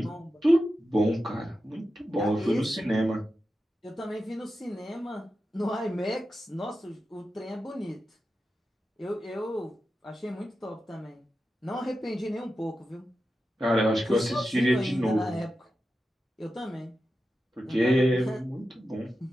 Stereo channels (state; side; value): normal; both; correlation 0.91